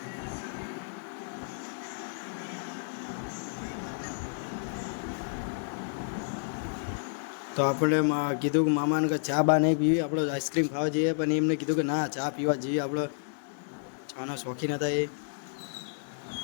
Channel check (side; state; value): right; silent; digital silence